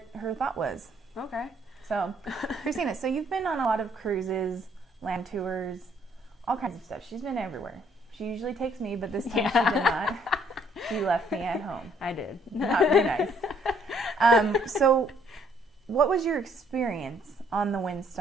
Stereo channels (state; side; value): normal; both; correlation 0.65